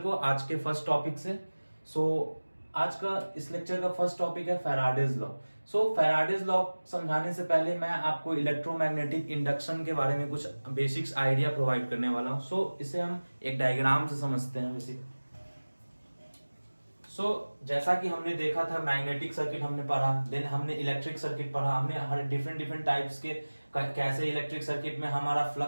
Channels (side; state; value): both; inverted; correlation -1.00